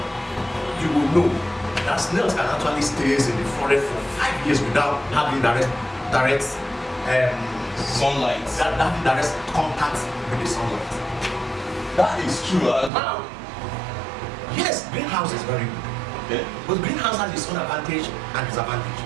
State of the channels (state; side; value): drops out; left; at 12.9 s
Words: you will know that snails can actually stay in the forest for 5 years without having direct sunlight. That direct contact with the sunlight. That is true. Now, yes, greenhouse is very good. Okay. But greenhouse has its own advantage and disadvantage.